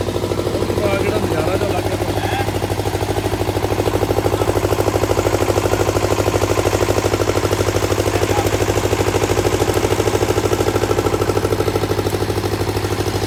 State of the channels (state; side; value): identical; both; correlation 1.00